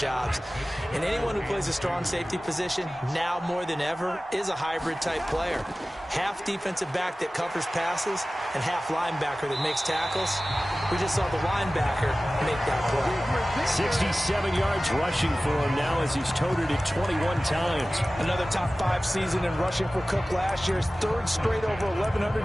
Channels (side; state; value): both; normal; correlation 0.97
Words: And anyone who plays a strong safety position, now more than ever, is a hybrid-type player. Half defensive back that covers passes and half linebacker that makes tackles. We just saw the linebacker make that play. 67 yards rushing for him now as he's toted it 21 times. Another top 5 season in rushing for Cook last year. His third straight over 1,100